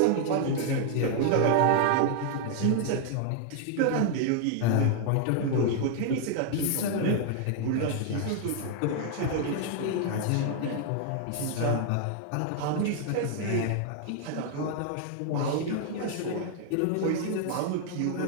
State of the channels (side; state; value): both; different; correlation 0.00